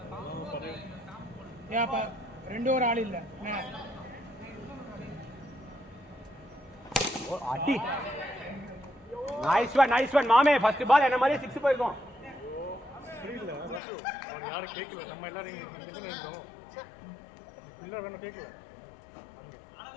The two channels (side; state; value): right; drops out; at 13.8 s